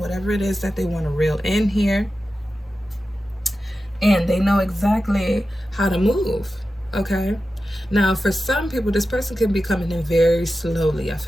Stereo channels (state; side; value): normal; both; correlation 0.92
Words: it is that they want to reel in here. And they know exactly how to move, okay? Now, for some people, this person can be coming in very slowly. I